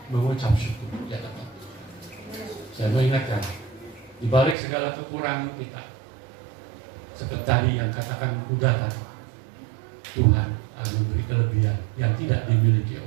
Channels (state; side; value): drops out; left; at 4.5 s